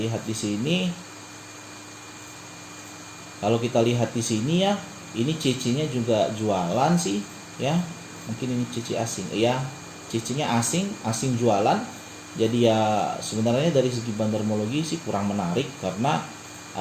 di sini. Kalau kita lihat di sini ya, ini CC-nya juga jualan sih ya. Mungkin ini CC asing. Ya, CC-nya asing jualan. Jadi ya sebenarnya dari segi bandarmologi sih kurang menarik karena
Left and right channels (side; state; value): both; identical; correlation 1.00